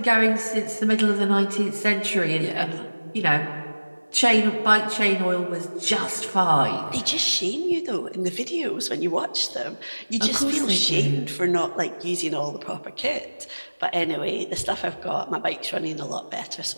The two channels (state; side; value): inverted; both; correlation -1.00